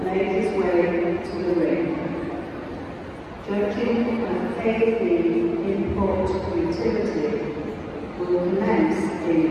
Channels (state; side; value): identical; both; correlation 1.00